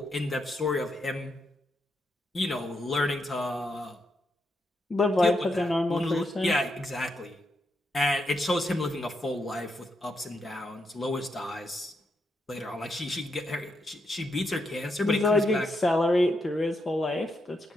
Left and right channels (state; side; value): normal; both; correlation 0.81